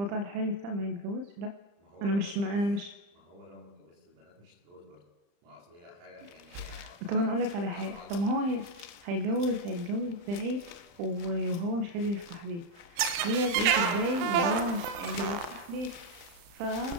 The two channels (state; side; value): late; left; 35 ms